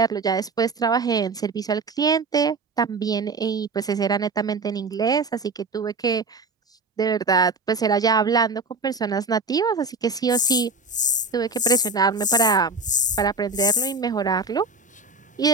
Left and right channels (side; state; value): left; quieter; 3.5 dB